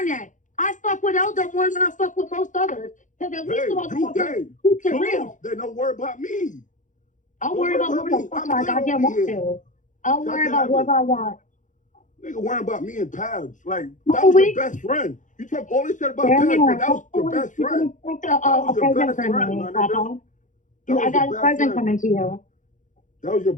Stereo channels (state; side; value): late; right; 0.37 ms